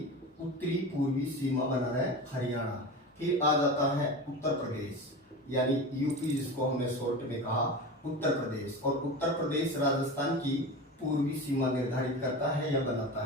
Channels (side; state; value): both; normal; correlation 0.29